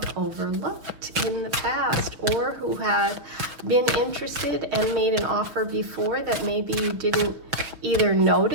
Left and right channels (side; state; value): left; late; 6.1 ms